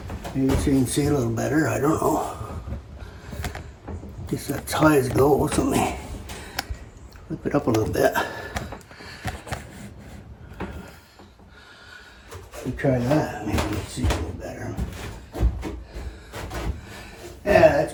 Maybe so you can see a little better. I don't know. Guess that's high as it goes. Let me flip it up a little bit. Try that. Maybe you can see a little better. Yeah, that's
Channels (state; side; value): identical; both; correlation 1.00